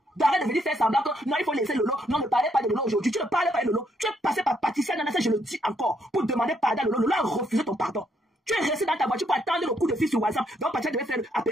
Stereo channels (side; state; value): both; normal; correlation 0.73